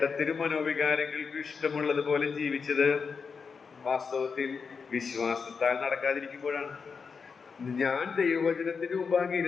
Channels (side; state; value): right; quieter; 5.5 dB